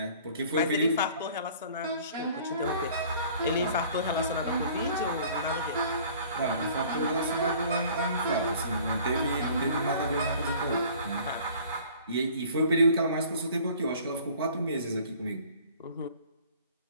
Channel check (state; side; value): inverted; both; correlation -0.51